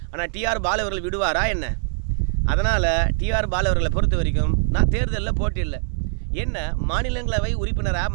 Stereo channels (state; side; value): silent; left; digital silence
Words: ஆனால் டிஆர் பாலு அவர்கள் விடுவாரா என்ன? அதனால் டிஆர் பாலு அவர்களை பொறுத்த வரைக்கும் நான் தேர்தலில் போட்டியில்லை, என்ன மாநிலங்களவை உறுப்பினராக